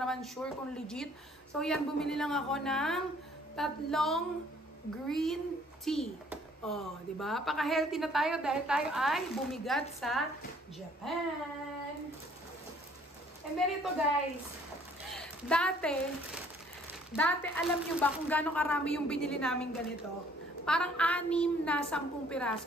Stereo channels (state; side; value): normal; both; correlation 0.59